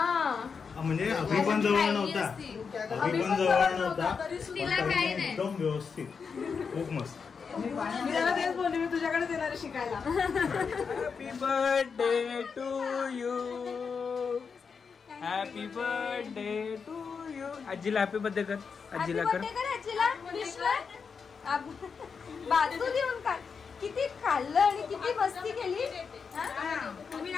म्हणजे अभि पण जवळ नव्हता. अभि पण जवळ नव्हता. तिला काय नाही. एकदम व्यवस्थित. खूप मस्त. मी त्याला तेच बोलले मी तुझ्याकडे येणार शिकायला. Happy birthday to you. Happy birthday to you. आजीला हॅपी बर्थडे कर. आजीला कर. बाजू देऊन काय किती खाल्लं आणि किती मस्ती केली. तुम्ही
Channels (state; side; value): quieter; right; 5.7 dB